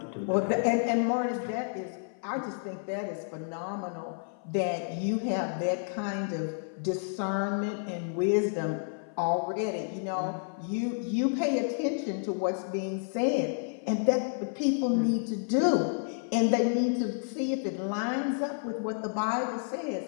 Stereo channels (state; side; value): silent; right; 55 dB below the other